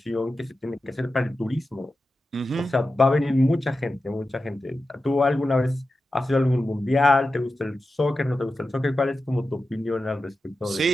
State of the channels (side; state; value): both; normal; correlation 0.92